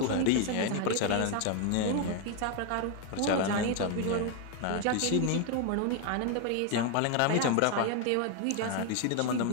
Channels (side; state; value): both; different; correlation 0.01